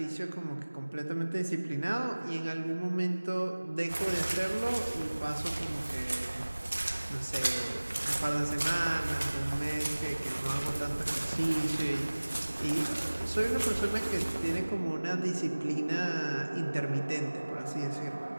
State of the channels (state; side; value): inverted; both; correlation -1.00